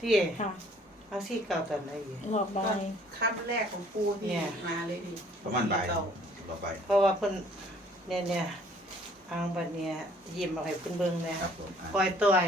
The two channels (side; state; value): both; normal; correlation 0.58